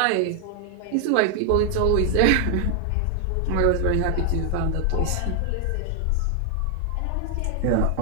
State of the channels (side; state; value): both; different; correlation 0.00